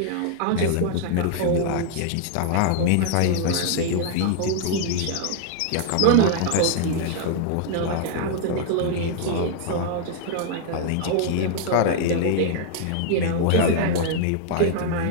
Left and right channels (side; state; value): both; different; correlation 0.00